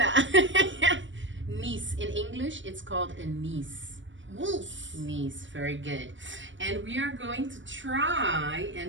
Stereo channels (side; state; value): left; late; 0.55 ms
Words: niece. In English, it's called a niece. Niece, very good. And we are going to try